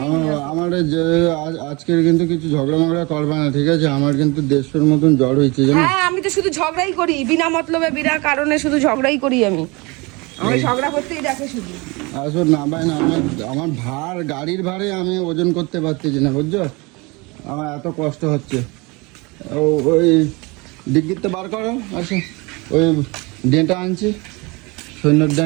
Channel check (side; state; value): left; quieter; 26.1 dB